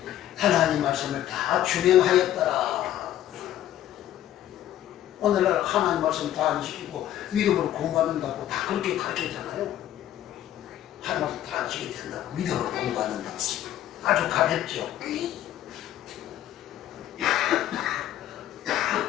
하나님 말씀을 다 준행하였더라. 오늘날 하나님 말씀 다 안 지키고 믿음으로 공부받는다고 다 그렇게 가르치잖아요. 하나님 말씀 다 안 지키게 된다고 믿음으로 공부받는다고. 아주 가볍죠.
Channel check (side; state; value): right; quieter; 12.4 dB